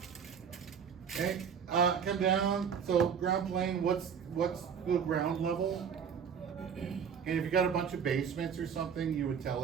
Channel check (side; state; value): left; quieter; 7.2 dB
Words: Okay, Come down, so ground plane, what's the ground level? And if you got a bunch of basements or something, you would tell